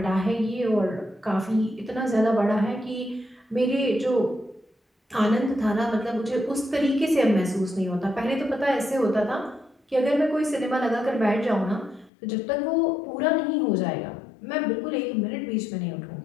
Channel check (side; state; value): right; drops out; at 12.1 s